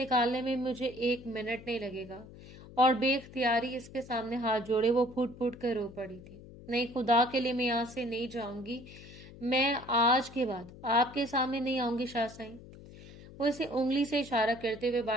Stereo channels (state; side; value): noise; left; hum, 18 dB below the sound